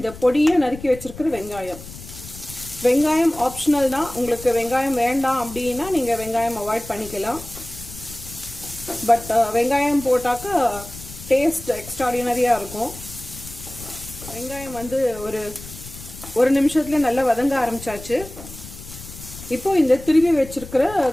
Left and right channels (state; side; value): noise; left; rumble, 15 dB below the sound